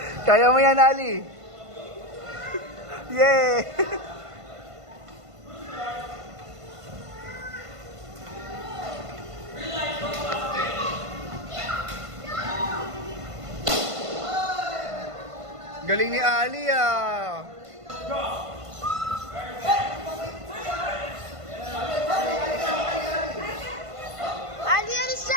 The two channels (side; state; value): left; late; 1.5 ms